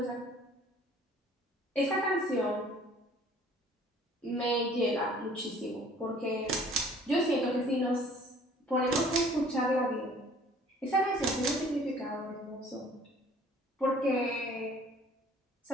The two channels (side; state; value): both; normal; correlation 0.54